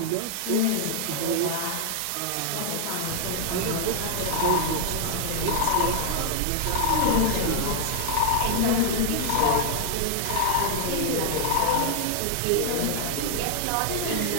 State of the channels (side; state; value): both; different; correlation 0.00